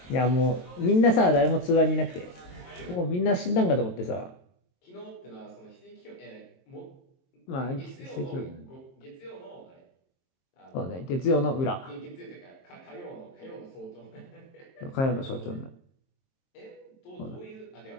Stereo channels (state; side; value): late; right; 22 ms